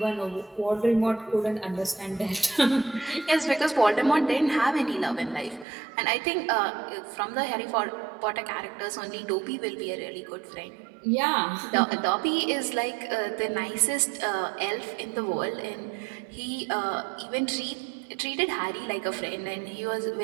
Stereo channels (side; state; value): left; drops out; at 5.7 s